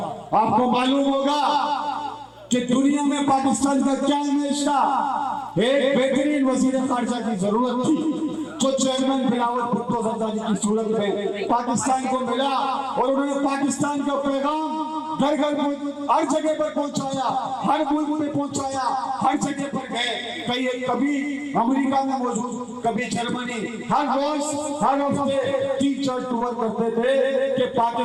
आपको मालूम होगा कि दुनिया में पाकिस्तान का क्या इमेज था। एक बेहतरीन वजीर खारजा की जरूरत थी, जो चेयरमैन बिलावल भुट्टो जरदारी की सूरत में पाकिस्तान को मिला, और उन्होंने पाकिस्तान का पैगाम घर घर हर जगह पर पहुंचाया, हर मुल्क में पहुंचाया, हर जगह पर गए। कभी अमेरिका में मौजूद, कभी जर्मनी, हर रोज हर हफ्ते 3-4 टूर करते थे कि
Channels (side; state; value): both; identical; correlation 1.00